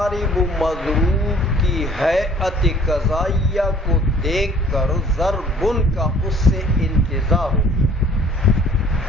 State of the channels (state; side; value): normal; both; correlation 0.54